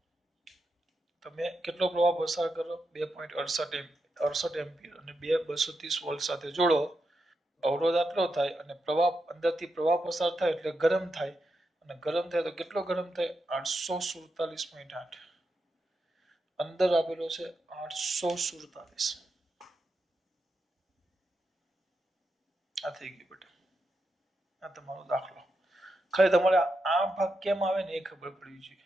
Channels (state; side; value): normal; both; correlation 0.86